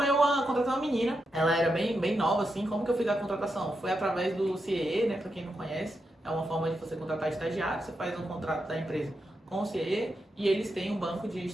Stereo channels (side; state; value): both; normal; correlation 0.85